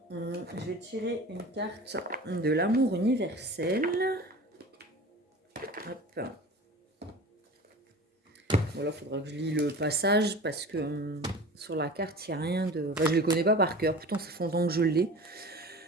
vais tirer une carte de l'amour universel. Hop. Voilà, il faudra que je lis le passage parce que sur la carte, il n'y a rien de... Enfin, je ne le connais pas par cœur. Pourtant, ça fait longtemps que je l'ai.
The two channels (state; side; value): normal; both; correlation 0.37